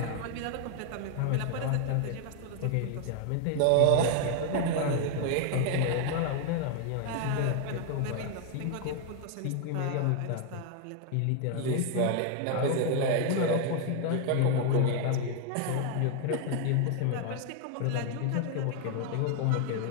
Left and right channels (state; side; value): different; both; correlation 0.00